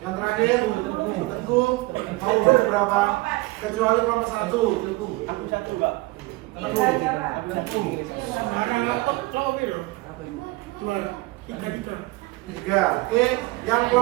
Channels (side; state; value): left; quieter; 21.6 dB